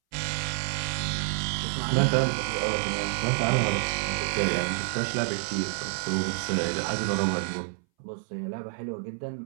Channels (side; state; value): left; silent; 59 dB below the other